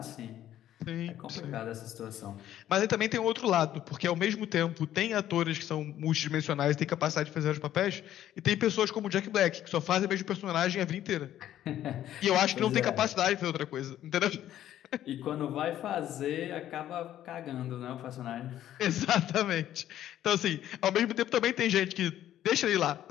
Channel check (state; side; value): quieter; right; 12.0 dB